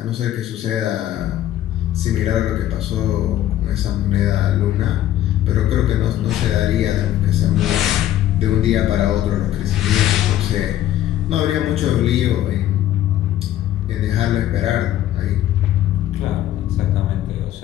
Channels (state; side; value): quieter; right; 12.6 dB